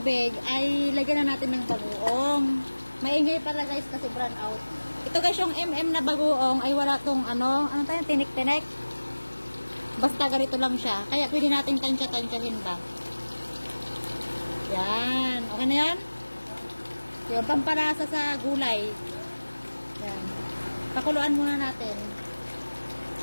ay lagyan na natin ng bagoong. Maingay pala guys kasi brown out. Ito guys yung na bagoong ay wala tong ano tayo, tinik-tinik. Basta ganito lang siya. Kaya pwede natin tansya-tansyahin ba. Yan. Okay na yan? Yung pamparasa sa gulay. Yan. Pakuluan muna natin.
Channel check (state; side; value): inverted; both; correlation -1.00